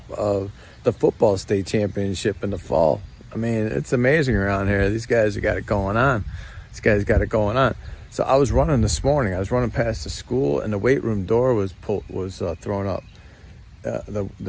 of the football state championship in the fall. I mean, it's amazing around here. These guys have got it going on. These guys got it going on. So I was running this morning. I was running past the school, and the weight room door was thrown up.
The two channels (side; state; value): both; identical; correlation 1.00